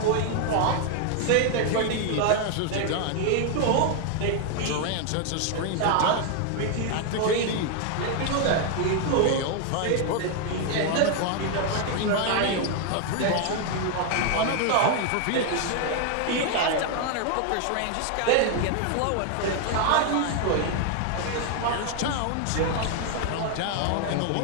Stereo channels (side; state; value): both; different; correlation 0.00